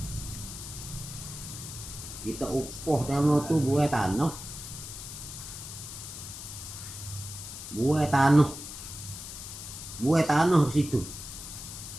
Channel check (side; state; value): left; noise; hiss, 10 dB below the sound